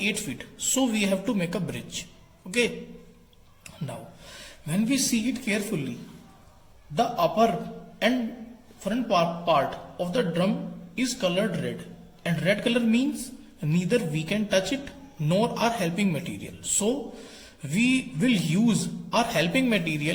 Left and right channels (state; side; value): identical; both; correlation 1.00